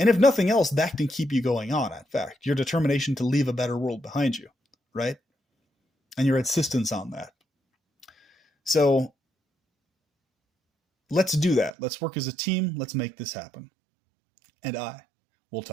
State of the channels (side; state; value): left; drops out; at 11.8 s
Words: if nothing else, that can keep you going on, in fact. Your determination to leave a better world behind you, right? And your insistence on that. So let's do that. Let's work as a team. Let's make this happen. And I will